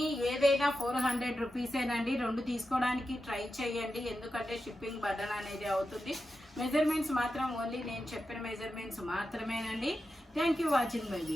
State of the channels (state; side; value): normal; both; correlation 0.90